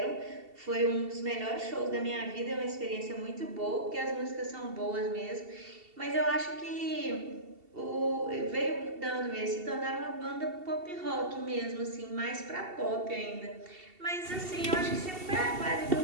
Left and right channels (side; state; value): left; late; 2.7 ms